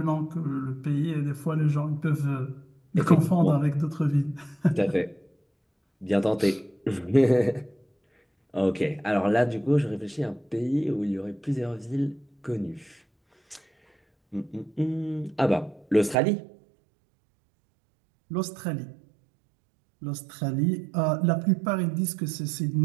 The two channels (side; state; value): left; drops out; at 16.2 s